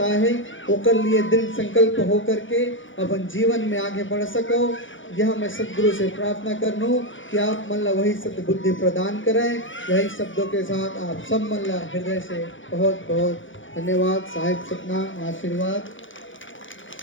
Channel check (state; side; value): late; right; 0.56 ms